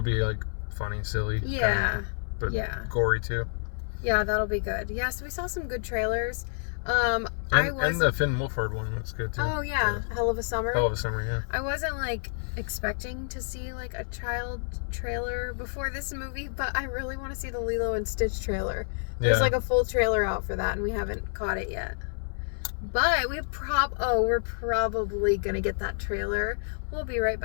be like funny, silly. Yeah. Kinda, but yeah. Gory too. Yeah, that'll be good. Yeah, so we saw some good trailers. And the Finn Wolfhard one looks good too. Oh yeah, Hell of a Summer. Hell of a Summer, yeah. I wasn't like expecting to see like a child trailer before this movie, but I really want to see the Lilo and Stitch trailer. There's like a full trailer out for that, and we haven't caught it yet. But we're probably gonna get that trailer. We'll be right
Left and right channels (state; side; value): silent; right; 59 dB below the other